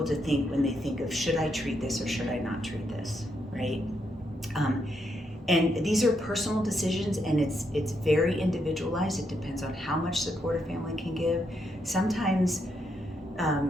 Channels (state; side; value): normal; both; correlation 0.79